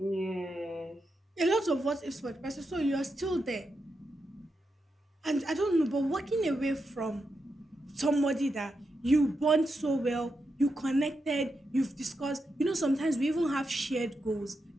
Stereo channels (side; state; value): both; normal; correlation 0.86